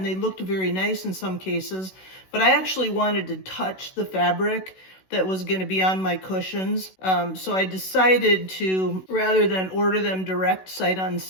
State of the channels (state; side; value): late; right; 16 ms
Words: they looked very nice in some cases. But I actually wanted to touch the fabric that was going to be on my cushions. So I decided to, rather than order them direct sight